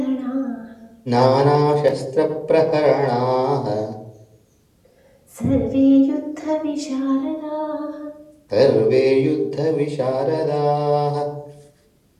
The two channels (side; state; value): both; identical; correlation 1.00